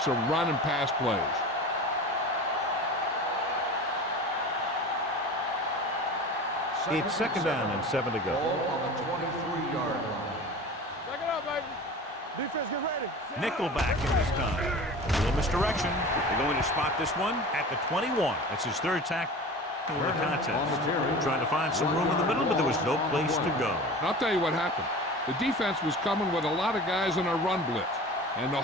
of run and pass plays. It's second down and 7 to go. Ball on the 23-yard line. Back it up, baby. Defense, get ready. Nickelback in this time. A little misdirection. They're going to spot this one at the 21. That's his third tackle in the contest. Trying to find some room in the middle, but there was no place to go. I'll tell you what happened. The defense was coming with a lot of guys in a run blitz, and the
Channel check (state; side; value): normal; both; correlation 0.36